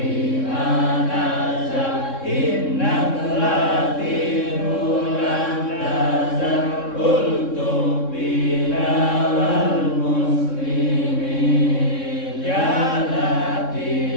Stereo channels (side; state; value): right; late; 3.6 ms